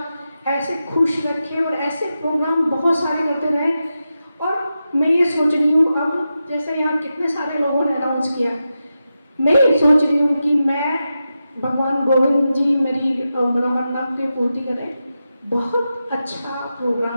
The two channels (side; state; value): both; inverted; correlation -0.90